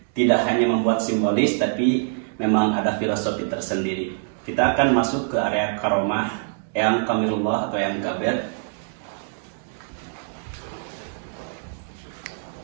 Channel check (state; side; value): silent; left; digital silence